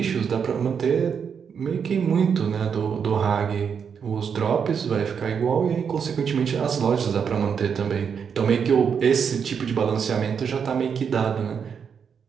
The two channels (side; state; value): left; quieter; 6.9 dB